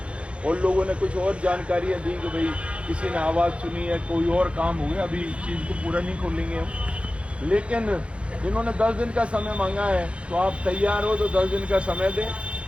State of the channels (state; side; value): late; left; 0.060 ms